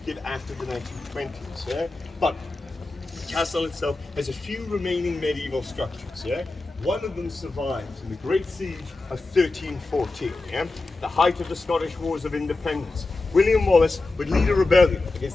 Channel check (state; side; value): quieter; right; 3.2 dB